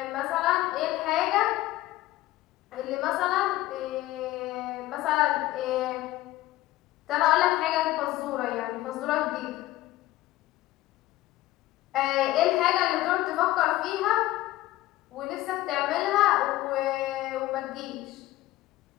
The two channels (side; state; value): right; quieter; 16.5 dB